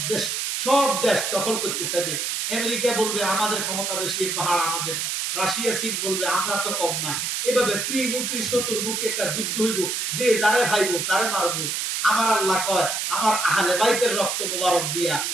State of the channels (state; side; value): noise; right; hiss, 1 dB below the sound